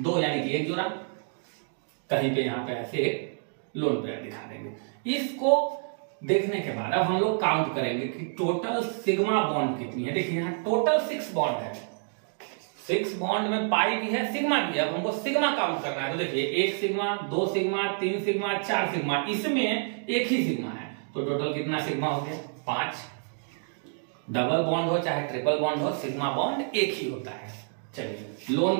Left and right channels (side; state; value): left; silent; 59 dB below the other